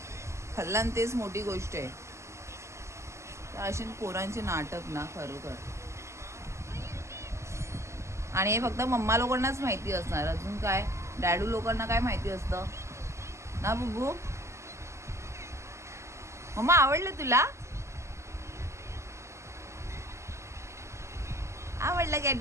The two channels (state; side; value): late; left; 0.13 ms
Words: खाल्ला ना तेच मोठी गोष्ट आहे. अशी पोरांचे नाटक ना, खरोखर. आणि हे फक्त मम्मा लोकांनाच माहिती असणार. अजून काय डॅडू लोकांना काय माहिती असतं ना बुब्बू. मम्मा आवडलं तुला, आवडलं काय